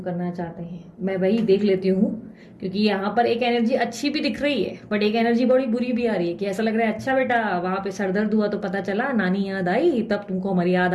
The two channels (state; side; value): identical; both; correlation 1.00